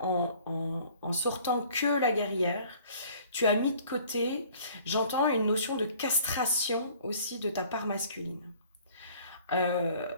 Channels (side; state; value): both; inverted; correlation -0.53